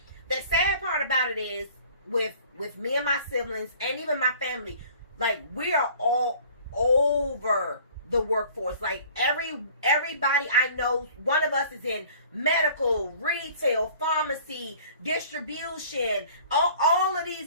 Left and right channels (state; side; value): inverted; both; correlation -0.50